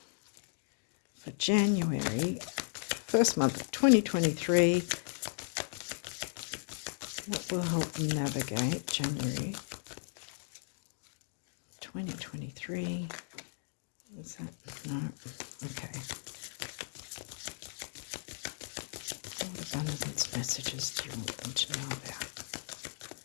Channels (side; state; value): right; silent; digital silence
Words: for January first month of 2023. What will help them navigate January 2023? Is that? No. Okay. What abundance messages do you want them to know about?